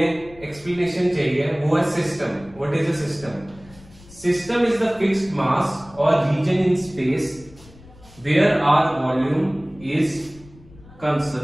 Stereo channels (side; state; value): left; noise; rumble, 23 dB below the sound